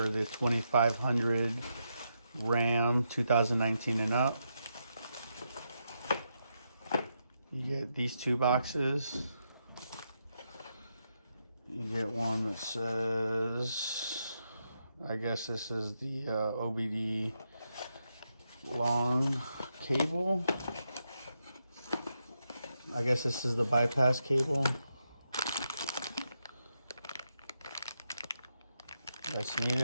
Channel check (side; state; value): both; inverted; correlation -0.83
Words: the 2500 Ram 2019 and up. You get these two boxes. You get one that says, I guess this is the OBD long cable. I guess this is the bypass cable. That's